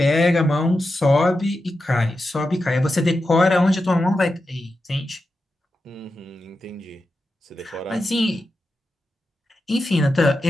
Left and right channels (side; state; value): both; normal; correlation 0.90